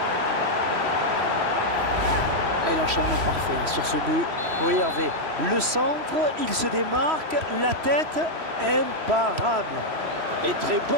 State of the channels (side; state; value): left; late; 3.1 ms